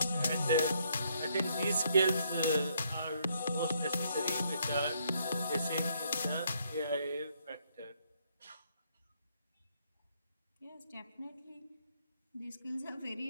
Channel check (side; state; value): both; inverted; correlation -0.71